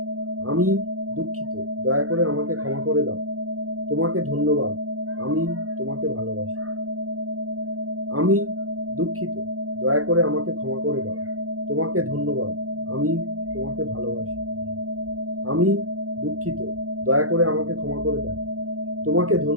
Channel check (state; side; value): late; left; 0.65 ms